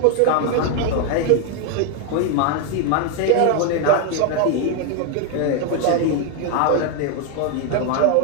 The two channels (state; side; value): different; both; correlation 0.00